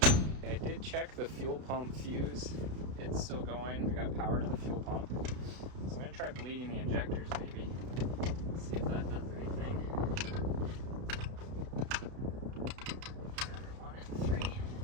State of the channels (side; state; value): left; late; 32 ms